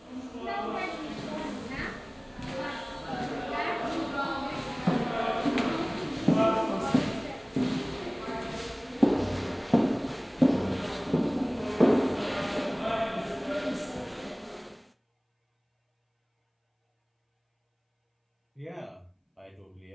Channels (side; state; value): both; identical; correlation 1.00